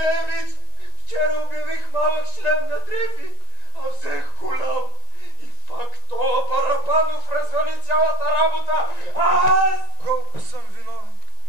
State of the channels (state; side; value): late; left; 1.9 ms